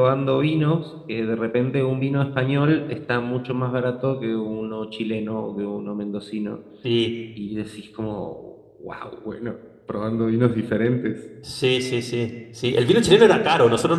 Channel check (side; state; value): both; identical; correlation 1.00